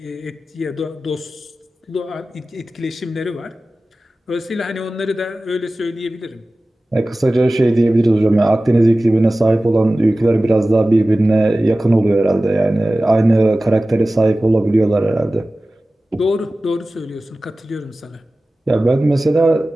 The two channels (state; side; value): normal; both; correlation 0.96